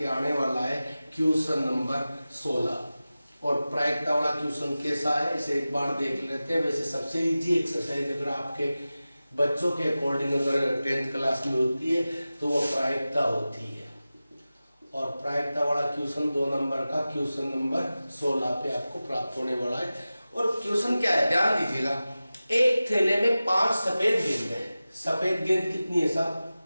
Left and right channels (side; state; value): both; inverted; correlation -0.95